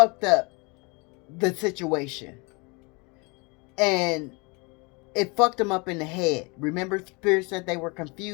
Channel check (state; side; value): quieter; right; 29.2 dB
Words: up the situation, and it fucked them up in the head. Remember, Spirit said they were